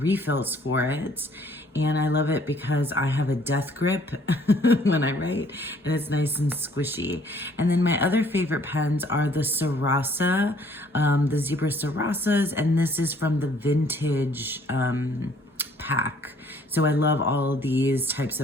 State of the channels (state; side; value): normal; both; correlation 0.60